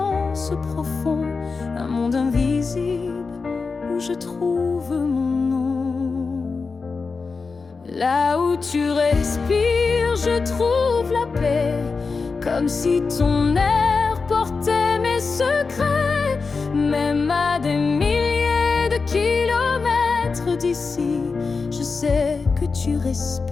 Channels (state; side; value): quieter; right; 4.5 dB